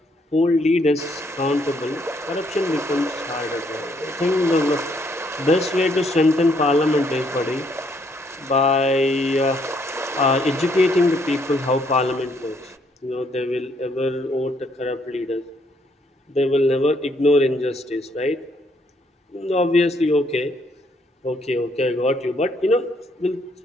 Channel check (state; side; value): normal; both; correlation 0.70